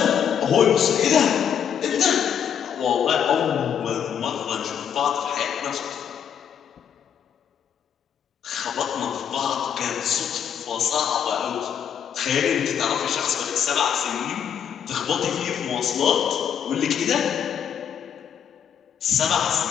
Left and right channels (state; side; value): quieter; right; 8.3 dB